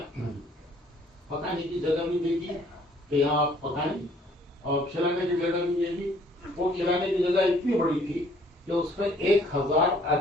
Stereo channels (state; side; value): normal; both; correlation 0.60